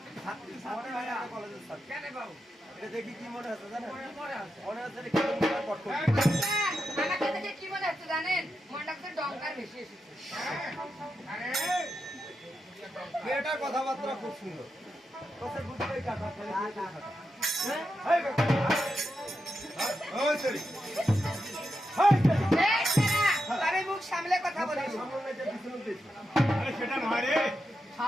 আমাদের ভাইরা কলেজের ছাত্র। কেন বাবু? এটা দেখি কি মনে হচ্ছে জানেন? মনে আছে। মনে হচ্ছে এটা কেমন করে কট করছে। কাকা, আমাকে দেখে কি মনে হচ্ছে জানেন? মনটা তো ডঙ্কার বেশি এসেছে। আরে, মেয়েটার কথাবার্তা খুব সুন্দর। তোকে বুঝতেই কাটা, ফেলে দিয়ে কাটা। হ্যাঁ? এই কাকা। ওই সরি। এই সরি। এই কাকা, তবে মুখ সামলে কথা বলিস। সামনে যে পিছনে দিয়েছে। আরে সেটা নয় রে।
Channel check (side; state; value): both; normal; correlation 0.87